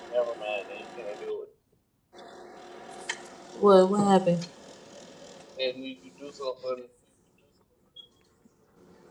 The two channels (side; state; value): both; identical; correlation 1.00